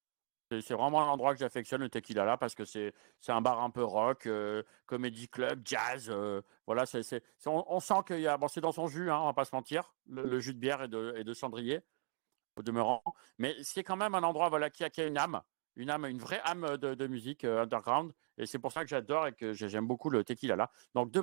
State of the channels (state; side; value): silent; left; 52 dB below the other